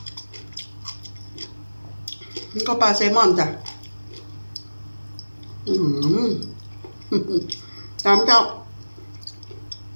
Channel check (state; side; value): inverted; both; correlation -1.00